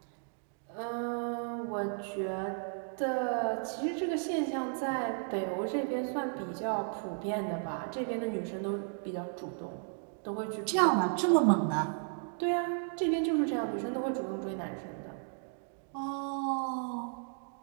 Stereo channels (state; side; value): silent; left; 55 dB below the other